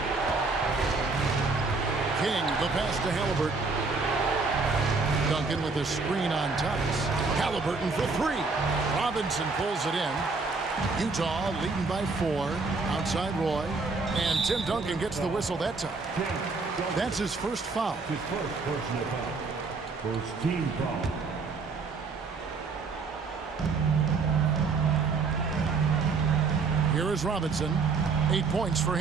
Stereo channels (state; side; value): quieter; left; 4.3 dB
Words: King, the pass to Halliburton. Duncan with a screen on Thomas. Halliburton for 3. Robinson pulls it in. Utah leading by 4. Outside Roy. And Tim Duncan gets the whistle that time. That's his first foul. His first personal foul. First team foul. Here is Robinson. 8 points for